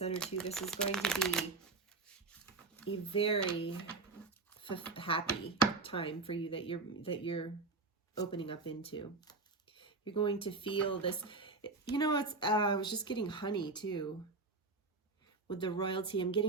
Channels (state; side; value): quieter; left; 3.8 dB